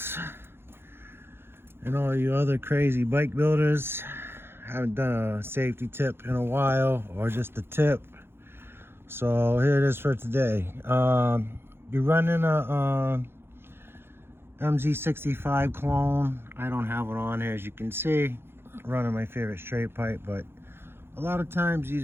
and all you other crazy bike builders. Haven't done a safety tip in a while, or just a tip. So here it is for today. You're running a Mz65 clone. I don't have it on here, as you can see. I'm running my favorite straight pipe, but a lot of times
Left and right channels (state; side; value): late; left; 0.11 ms